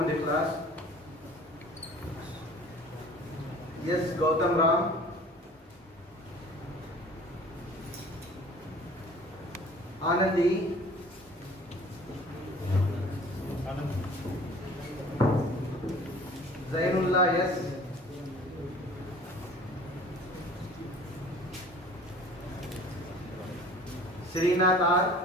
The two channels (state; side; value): normal; both; correlation 0.47